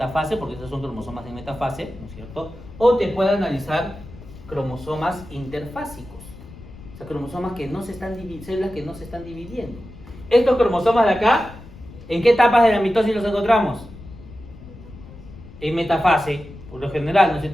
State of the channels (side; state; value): left; noise; rumble, 17 dB below the sound